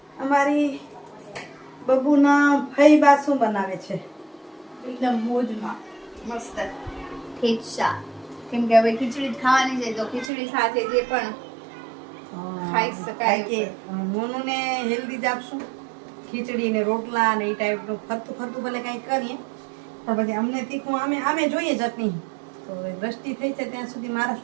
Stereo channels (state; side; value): drops out; left; at 10.3 s